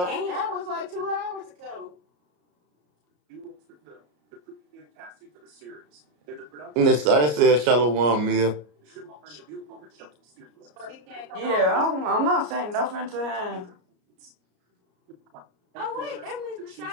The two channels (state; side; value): late; left; 34 ms